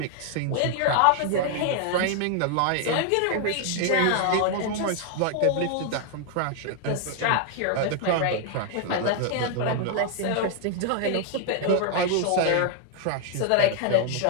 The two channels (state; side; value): different; both; correlation 0.00